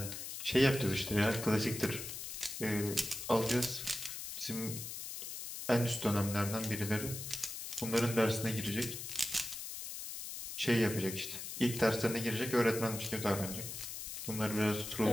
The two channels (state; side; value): noise; left; hiss, 7 dB below the sound